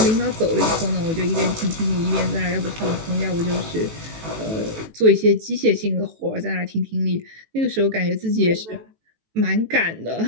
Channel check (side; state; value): left; late; 18 ms